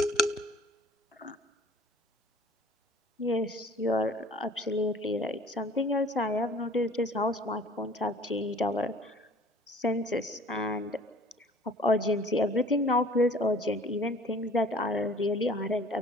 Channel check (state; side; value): normal; both; correlation 0.50